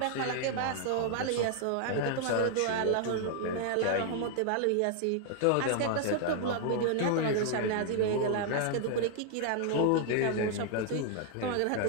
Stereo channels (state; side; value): different; both; correlation 0.00